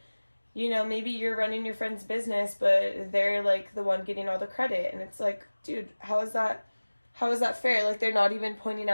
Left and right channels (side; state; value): both; inverted; correlation -1.00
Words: you know, maybe you're running your friend's business, but they're like the one getting all the credit. And it's like, dude, how is that fair? Like, they're not even pointing